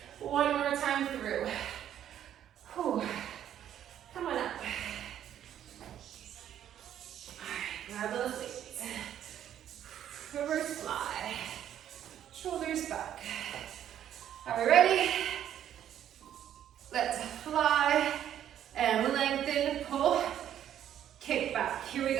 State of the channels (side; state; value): left; quieter; 10.6 dB